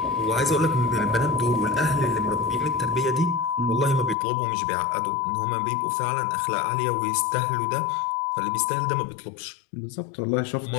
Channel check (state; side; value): drops out; right; at 4.2 s